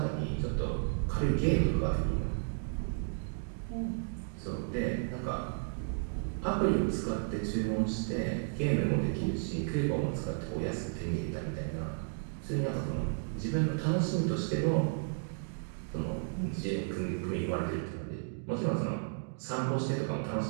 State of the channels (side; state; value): left; silent; digital silence